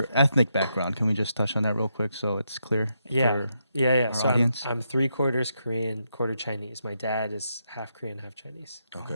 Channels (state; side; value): inverted; both; correlation -0.81